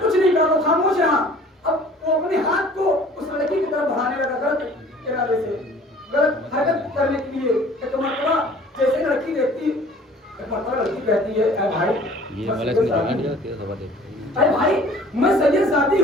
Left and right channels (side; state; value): both; normal; correlation 0.50